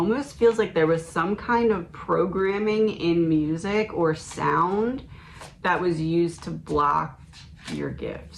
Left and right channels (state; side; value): identical; both; correlation 1.00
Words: feels like there was some kind of programming in music or sound that was used to block your